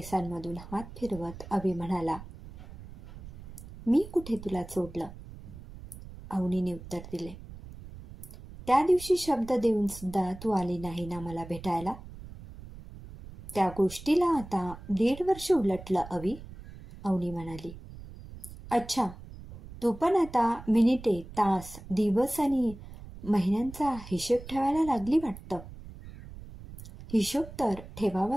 हात फिरवत अवी म्हणाला. मी कुठे तुला सोडलं? अवनीने उत्तर दिले. त्या दिवशी शब्द देऊन सुद्धा तू आली नाही ना मला भेटायला. त्या गोष्टीला आता 1.5 वर्ष उलटलं अवी, अवनी म्हणाली. अच्छा, तू पण आता मिनिटे, तास, दिवस आणि महिन्यांचा हिशेब ठेवायला लागली वाटतं. हिशोब तर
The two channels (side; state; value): right; noise; rumble, 15 dB below the sound